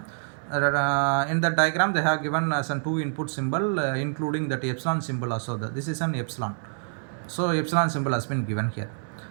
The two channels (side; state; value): left; silent; digital silence